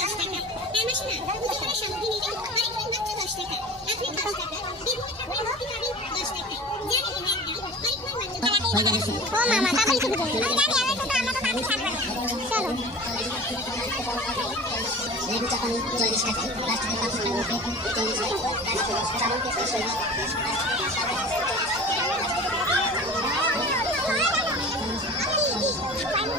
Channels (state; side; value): normal; both; correlation 0.38